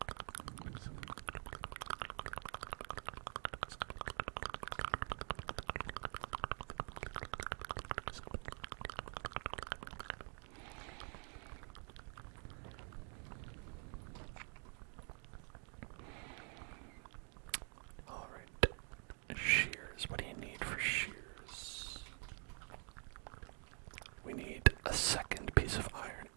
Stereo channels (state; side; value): quieter; left; 39.6 dB